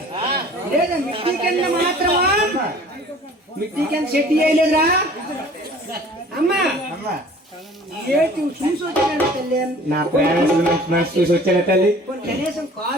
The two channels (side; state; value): both; normal; correlation 0.49